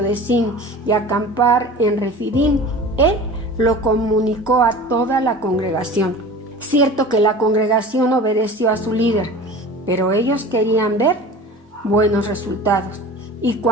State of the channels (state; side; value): normal; both; correlation 0.38